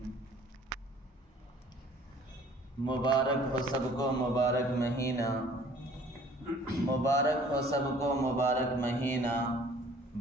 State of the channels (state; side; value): normal; both; correlation 0.53